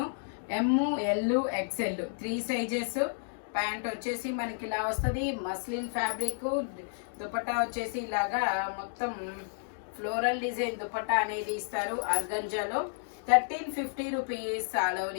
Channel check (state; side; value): silent; right; digital silence